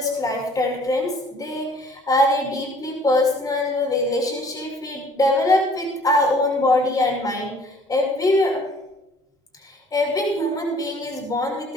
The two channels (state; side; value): normal; both; correlation 0.55